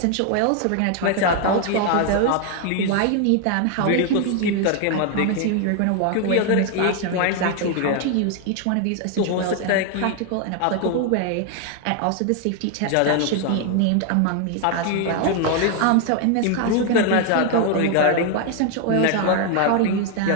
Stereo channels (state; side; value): different; both; correlation 0.00